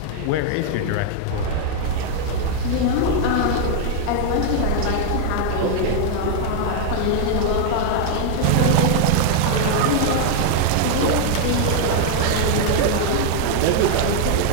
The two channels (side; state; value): both; different; correlation 0.00